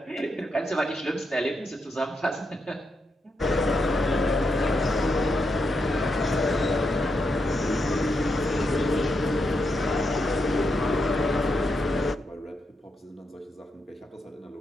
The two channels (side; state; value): both; normal; correlation 0.83